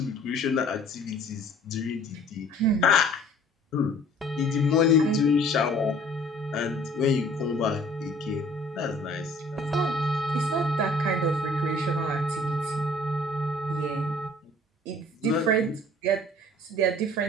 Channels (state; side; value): normal; both; correlation 0.53